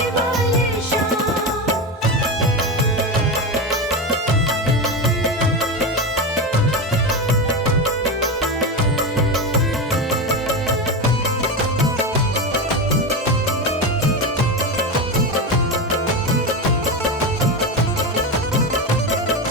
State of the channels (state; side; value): normal; both; correlation 0.18